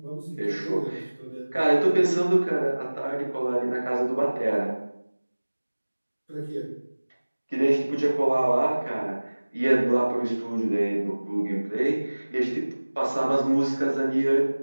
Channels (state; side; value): inverted; both; correlation -1.00